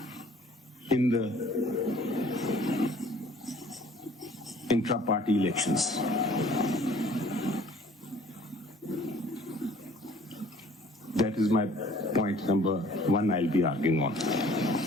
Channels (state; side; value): normal; both; correlation 0.54